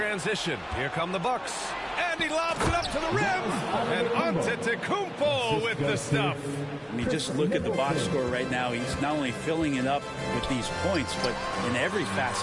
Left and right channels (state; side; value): identical; both; correlation 1.00